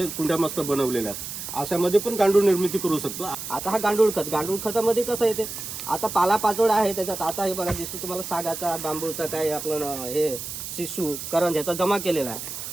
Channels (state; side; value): noise; right; hiss, 8 dB below the sound